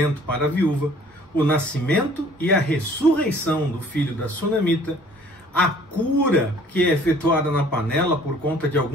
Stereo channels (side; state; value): both; normal; correlation 0.54